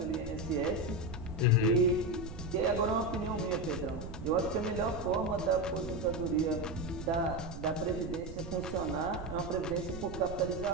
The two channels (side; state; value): right; noise; rumble, 10 dB below the sound